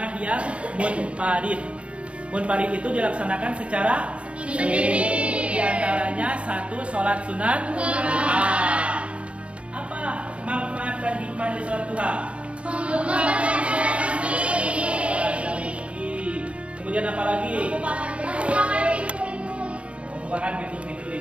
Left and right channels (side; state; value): left; late; 0.061 ms